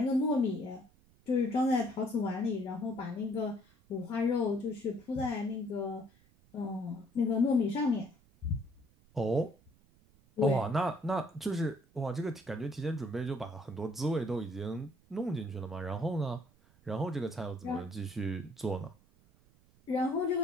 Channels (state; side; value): noise; right; rumble, 30 dB below the sound